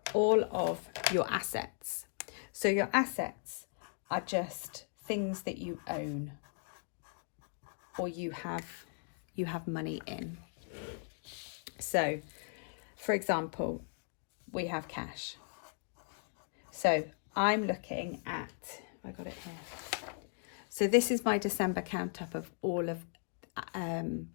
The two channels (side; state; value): right; silent; 53 dB below the other